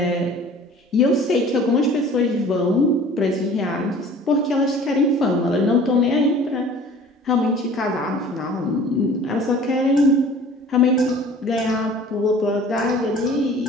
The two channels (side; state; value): both; normal; correlation 0.47